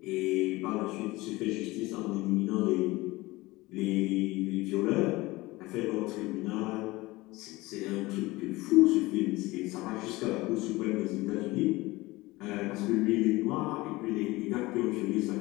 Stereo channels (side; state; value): right; quieter; 20.6 dB